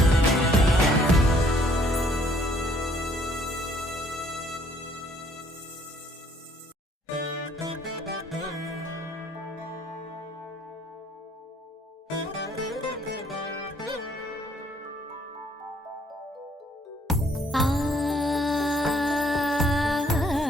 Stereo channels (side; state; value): both; normal; correlation 0.63